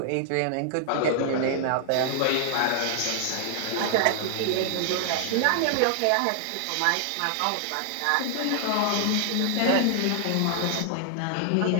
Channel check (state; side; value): different; both; correlation 0.00